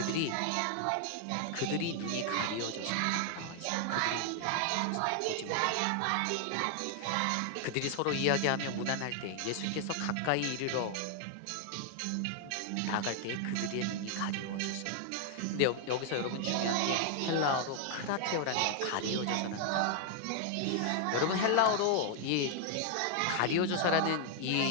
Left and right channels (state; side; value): different; both; correlation 0.00